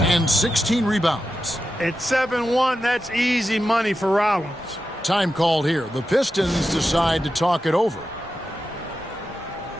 and 16 rebounds. At 7-1, that's easy money for Rollins. Time called here. The Pistons decide to talk it over.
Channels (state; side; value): normal; both; correlation 0.90